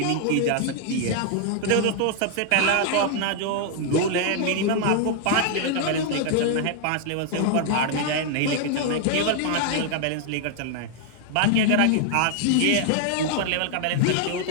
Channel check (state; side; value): different; both; correlation 0.00